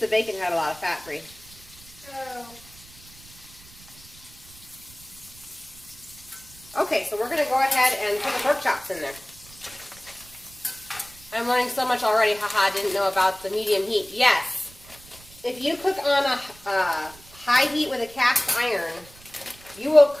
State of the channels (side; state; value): right; noise; rumble, 22 dB below the sound